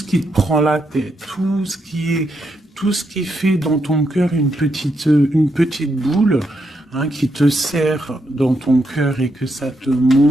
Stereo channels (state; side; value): normal; both; correlation 0.81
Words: qui te prend la tête, tout ce qui fait dans ton cœur une petite boule, hein, qui te serre dans ton cœur et que ça te